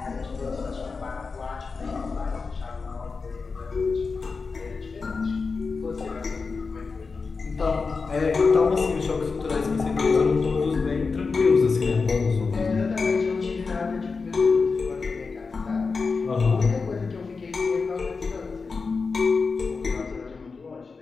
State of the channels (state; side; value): quieter; right; 4.6 dB